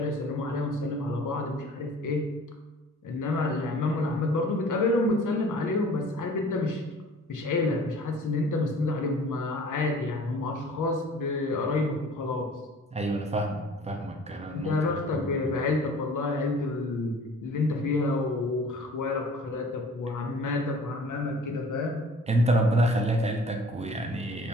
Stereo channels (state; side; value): normal; both; correlation 0.48